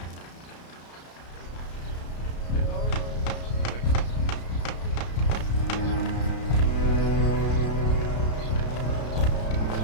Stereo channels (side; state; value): right; late; 33 ms